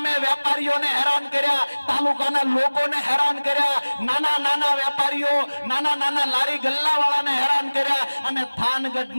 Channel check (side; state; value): both; inverted; correlation -1.00